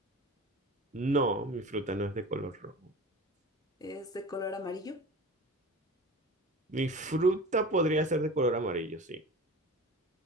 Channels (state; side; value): normal; both; correlation 0.35